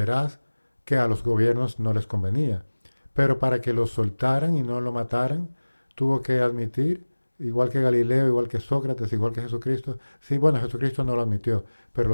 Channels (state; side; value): inverted; both; correlation -1.00